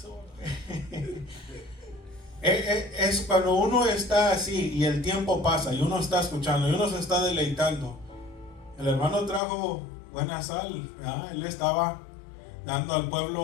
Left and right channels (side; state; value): right; drops out; at 9.4 s